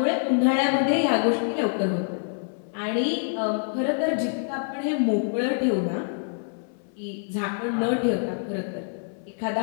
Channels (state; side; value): silent; right; 61 dB below the other